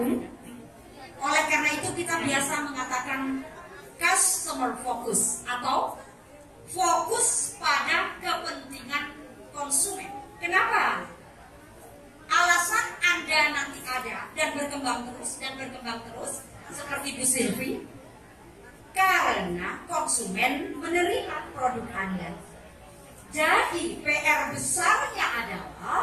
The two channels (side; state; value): both; identical; correlation 1.00